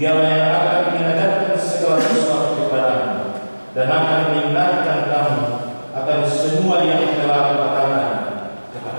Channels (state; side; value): inverted; both; correlation -1.00